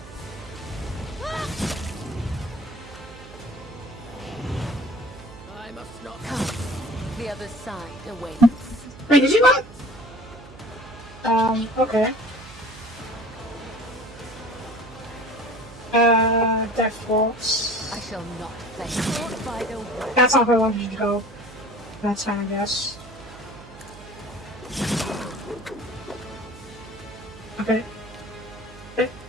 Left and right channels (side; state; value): right; noise; hum, 18 dB below the sound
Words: I must not come. The other side awaits. Wait, did you not? Okay. Death Waltz. I shall not play caught by the way. That's not where I wanted you to go. That's fine, I guess. Okay. I